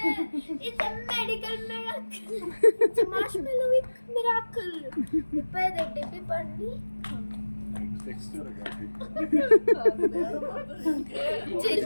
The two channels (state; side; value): inverted; both; correlation -1.00